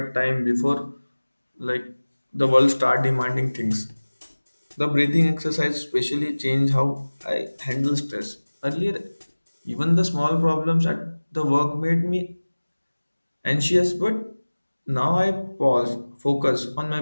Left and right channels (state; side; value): inverted; both; correlation -1.00